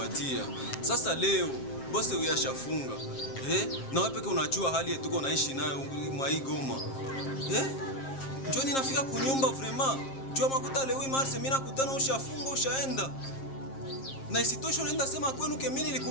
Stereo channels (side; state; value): right; late; 7.5 ms